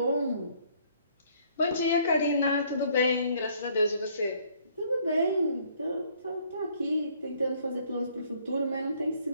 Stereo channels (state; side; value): inverted; both; correlation -0.63